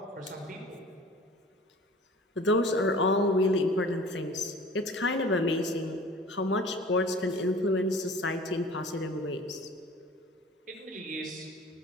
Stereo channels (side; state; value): both; normal; correlation 0.44